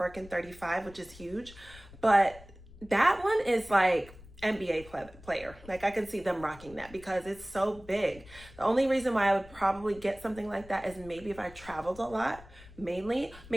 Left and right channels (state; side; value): noise; left; rumble, 20 dB below the sound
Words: 35, which is huge, but that one is like NBA player. Like I can see them rocking that because it's so big. The only reason why I would probably get something like that is maybe if I traveled a lot, mainly,